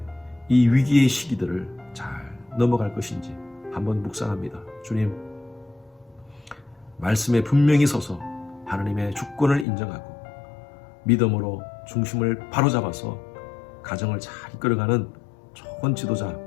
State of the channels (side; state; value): right; drops out; at 9.7 s